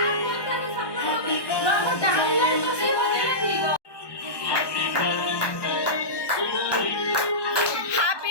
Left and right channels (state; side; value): late; right; 1.2 ms